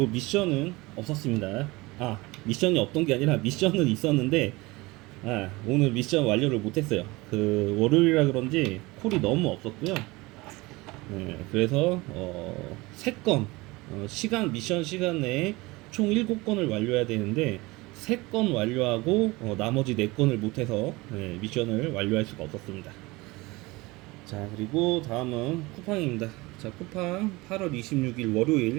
미션은 없었습니다. 미션이 없던 게 아니라 미션은 있었는데, 오늘 미션 완료를 못했어요. 그, 월요일이라 그런지 콜이 너무 없었고요. 그래서, 3건, 미션 시간 내에 총 7건을 완료해야 되는데, 3건 완료하고, 나머지 4건을 못해서, 미션을 완료할 수가 없었습니다. 자, 그리고 다음은 쿠팡입니다. 자, 쿠팡 8월 26일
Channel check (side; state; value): left; quieter; 22.4 dB